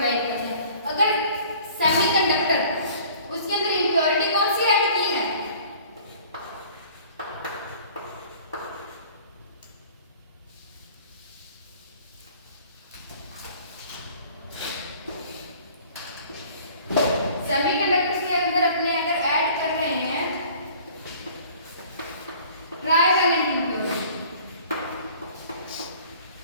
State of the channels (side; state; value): both; inverted; correlation -0.50